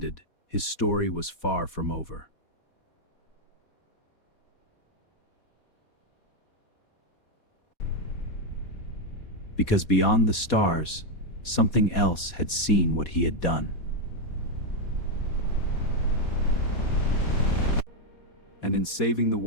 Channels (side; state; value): right; late; 4.2 ms